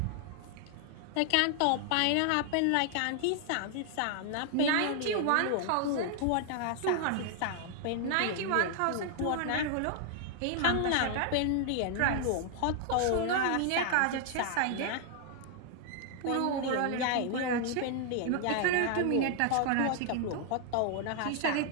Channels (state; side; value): different; both; correlation 0.00